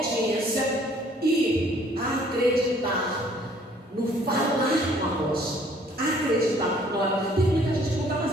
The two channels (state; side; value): normal; both; correlation 0.59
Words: e acreditar no falar com a rocha. Acreditar. Olha, tem muita gente que não está